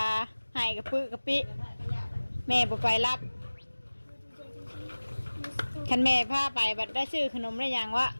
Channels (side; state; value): both; inverted; correlation -1.00